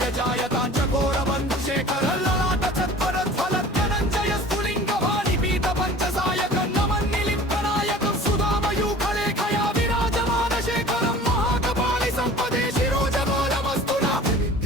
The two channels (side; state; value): both; normal; correlation 0.44